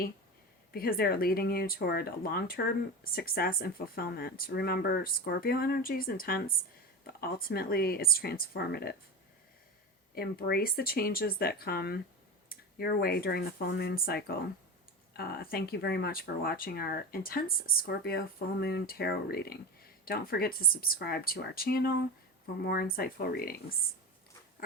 because they're leading you toward long-term success and fulfillment. Remember, Scorpio energy is intense, but ultimately it's transformative. Embrace the changes that come your way during the full moon cycle. Thank you very much for watching our intense Scorpio full moon tarot reading. Don't forget to subscribe to our channel for more insightful readings.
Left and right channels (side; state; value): both; normal; correlation 0.24